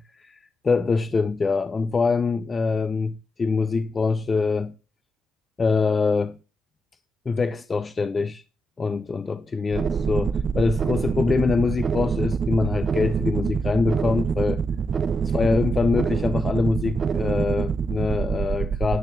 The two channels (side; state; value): both; normal; correlation 0.85